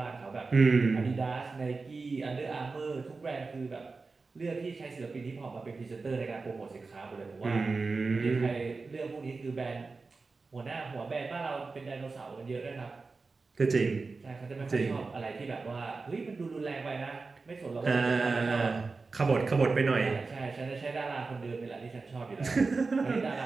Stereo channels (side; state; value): left; quieter; 4.1 dB